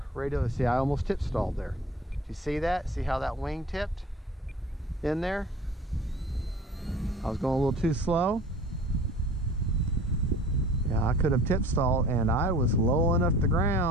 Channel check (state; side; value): normal; both; correlation 0.44